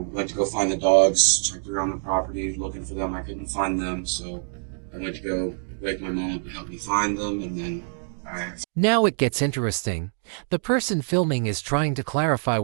went to go find the dogs, checked around the property looking for them. I couldn't find them, so I went to go wake my mom up and help me find them, and then Now it gets interesting. The person filming is trying to clarify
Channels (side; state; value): left; silent; digital silence